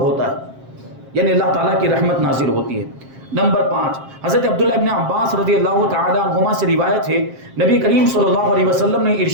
ہے، یعنی اللہ تعالیٰ کی رحمت نازل ہوتی ہے. نمبر 5، حضرت عبداللہ ابن عباس رضی اللہ تعالی عنہما سے روایت ہے، نبی کریم صلی اللہ علیہ وسلم نے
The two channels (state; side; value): late; left; 7.5 ms